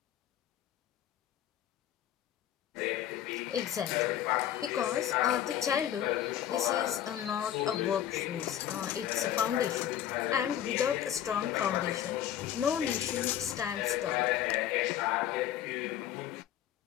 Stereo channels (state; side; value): quieter; right; 11.1 dB